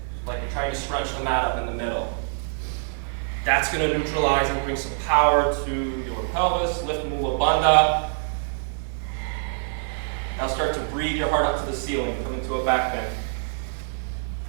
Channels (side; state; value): left; silent; digital silence